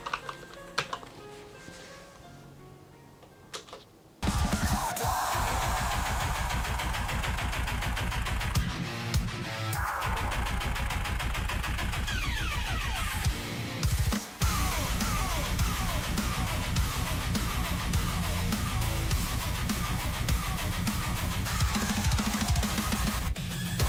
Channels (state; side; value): identical; both; correlation 1.00